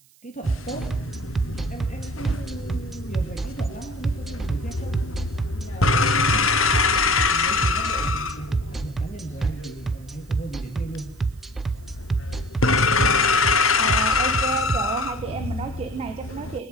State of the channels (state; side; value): noise; right; hiss, 29 dB below the sound